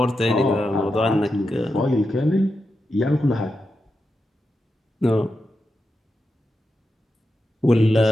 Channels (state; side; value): normal; both; correlation 0.88